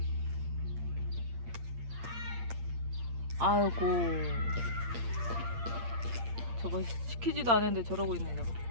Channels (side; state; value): left; late; 8.7 ms